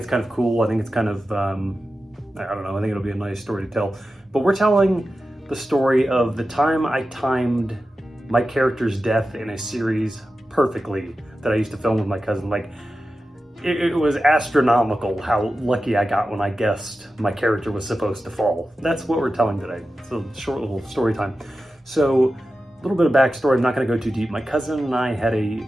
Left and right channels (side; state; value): both; normal; correlation 0.93